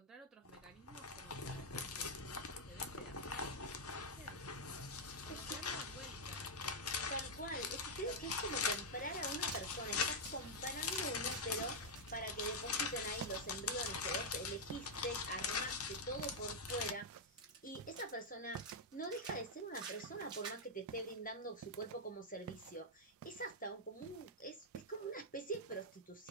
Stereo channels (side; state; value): both; normal; correlation -0.03